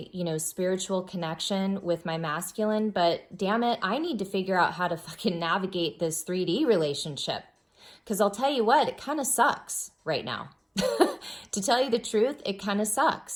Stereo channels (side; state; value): both; identical; correlation 1.00